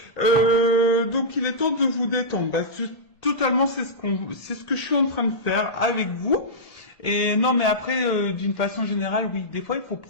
il est temps de vous détendre. Bah, totalement, c'est ce que je suis en train de faire avec vous. Et non, mais après, d'une façon générale, oui, des fois, il faut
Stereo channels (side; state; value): right; late; 1.8 ms